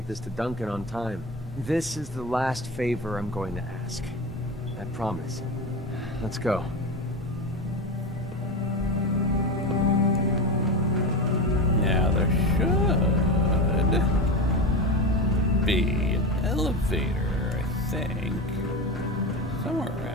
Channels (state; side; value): normal; both; correlation 0.22